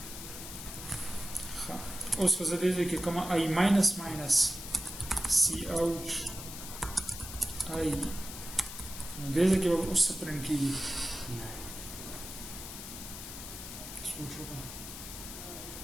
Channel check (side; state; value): left; noise; hiss, 10 dB below the sound